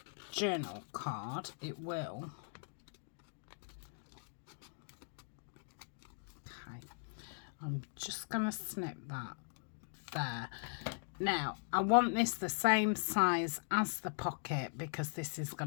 journal card. It will. Okay, I'm just gonna snip that there. Now, I want this the same size as the pocket because this is going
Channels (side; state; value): right; silent; digital silence